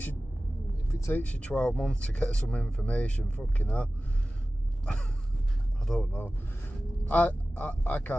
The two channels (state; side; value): normal; both; correlation 0.96